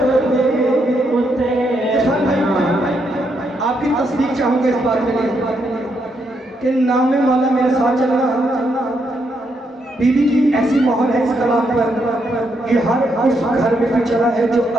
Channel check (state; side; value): normal; both; correlation 0.78